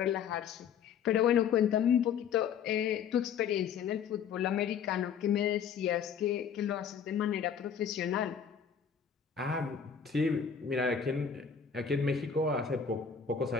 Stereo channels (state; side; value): quieter; right; 7.3 dB